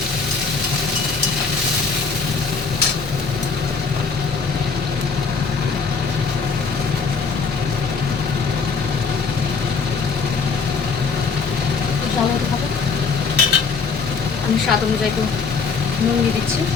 জল হতে হবে। আমি স্বাদ অনুযায়ী একটু নুন দিয়ে দিচ্ছি,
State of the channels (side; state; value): right; quieter; 5.1 dB